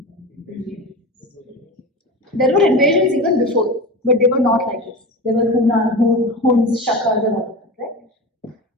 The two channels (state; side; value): normal; both; correlation 0.28